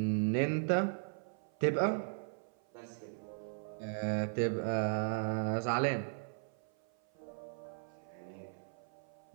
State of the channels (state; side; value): silent; left; 53 dB below the other